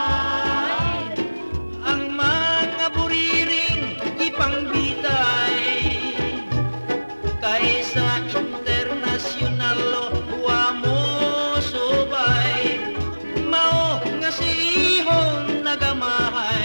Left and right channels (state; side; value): inverted; both; correlation -1.00